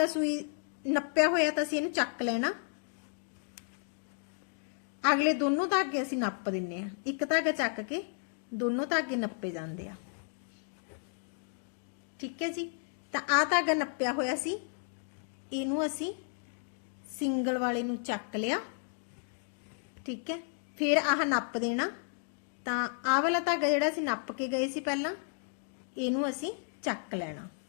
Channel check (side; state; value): right; silent; 56 dB below the other